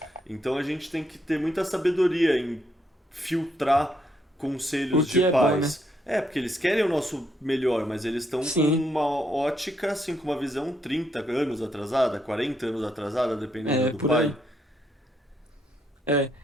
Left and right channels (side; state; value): both; normal; correlation 0.76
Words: Então a gente tem que ter muita sabedoria em filtrar O conselhos de que é bom, né? pais. É, porque eles querem o nosso melhor, mas eles estão com Sim. uma ótica, assim, com uma visão 30 anos atrasada, 40 anos atrasada, dependendo É, do por pai. aí. É.